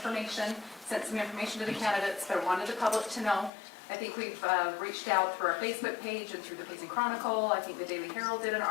sent some information to the candidates, but I wanted the public to know. I think we've reached out through our Facebook page and through the Payson Chronicle. I think the Daily Herald did an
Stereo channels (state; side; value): drops out; right; at 3.5 s